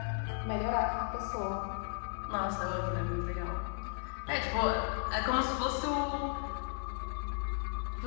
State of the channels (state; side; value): silent; right; 54 dB below the other